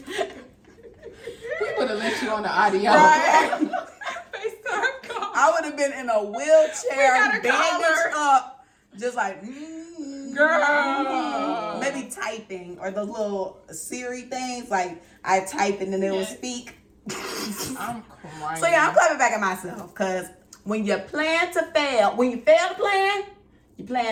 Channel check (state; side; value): identical; both; correlation 1.00